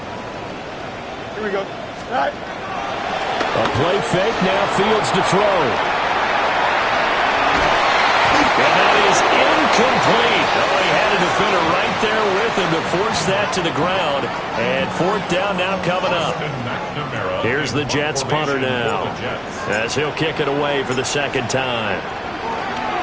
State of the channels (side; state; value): both; identical; correlation 1.00